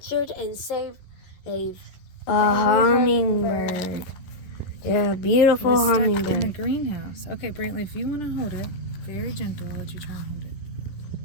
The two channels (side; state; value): right; late; 12 ms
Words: and saved a hummingbird. Yeah, beautiful Stuck hummingbird. in the greenhouse. Okay, Brantley, if you want to hold it, very gentle, I'll let you try and hold it.